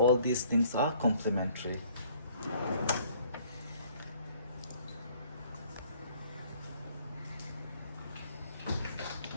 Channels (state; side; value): inverted; both; correlation -0.59